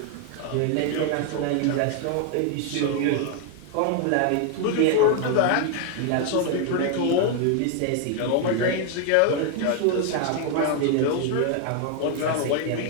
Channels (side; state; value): both; different; correlation 0.01